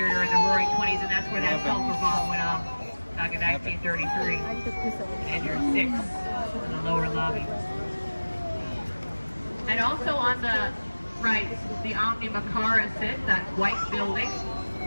in the Roaring 20s, and that's where that sulfur bomb went off back in 1933. And you're 6 in the lower lobby. And also on the right, the Omni Macara sits, that white building.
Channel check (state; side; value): inverted; both; correlation -1.00